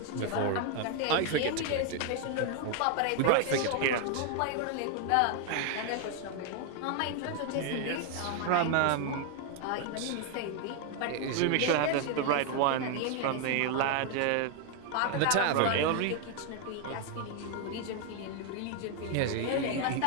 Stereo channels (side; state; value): both; different; correlation 0.00